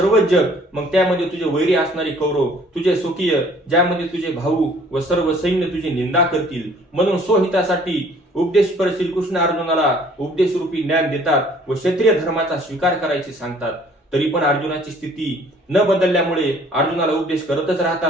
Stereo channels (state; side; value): normal; both; correlation 0.56